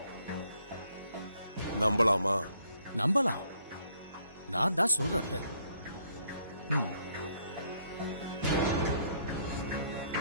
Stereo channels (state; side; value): inverted; both; correlation -0.68